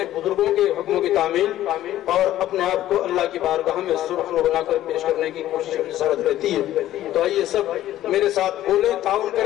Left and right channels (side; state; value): right; quieter; 13.4 dB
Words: بزرگوں کے حکموں کی تعمیل اور اپنے آپ کو اللہ کی بارگاہ میں سرخرو بنا کر پیش کرنے کی کوشش اور جسارت رہتی ہے. تو آئیے سب میرے ساتھ بولیں، تعاون